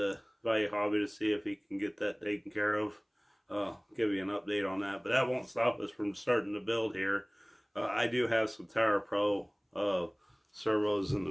Value Hobby to see if he can get that taken care of. Give you an update on that, but that won't stop us from starting to build here. I do have some Tower Pro servos in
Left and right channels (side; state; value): both; identical; correlation 1.00